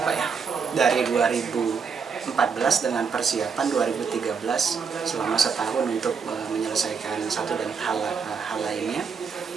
ya, dari 2014 dengan persiapan 2013 selama setahun untuk menyelesaikan satu dan hal lainnya.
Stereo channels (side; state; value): left; quieter; 5.9 dB